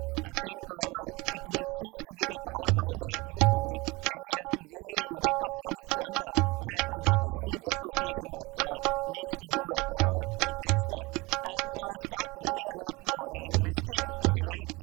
I think it will cease to be the powerhouse that it used to be. Delhi has to really wake up from its slumber, and that is only the association that needs to do it, or take that step and start winning a lot more and investing in the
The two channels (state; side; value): quieter; left; 24.0 dB